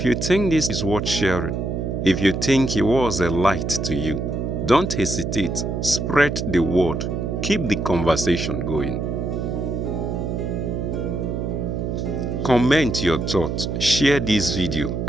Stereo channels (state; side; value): noise; right; hum, 2 dB below the sound